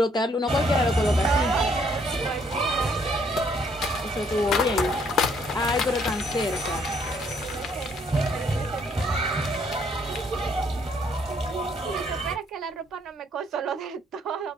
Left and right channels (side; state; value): both; normal; correlation 0.67